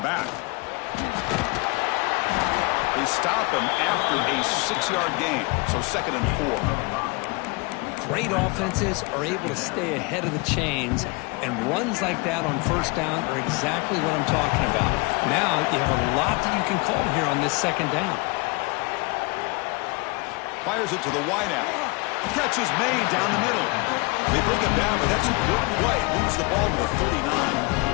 They stop him after a 6-yard gain, so 2nd and 4. Great offenses are able to stay ahead of the chains, and runs like that on first down are exactly what I'm talking about. Now you have a lot that you can call here on this 2nd down. Fires it to the wideout. Catch is made down the middle. They bring him down, but that's a good play. Moves the ball to the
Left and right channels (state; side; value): quieter; right; 27.2 dB